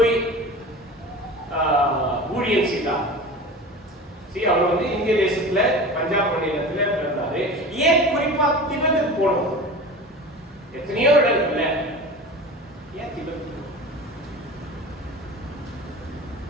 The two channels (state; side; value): normal; both; correlation 0.34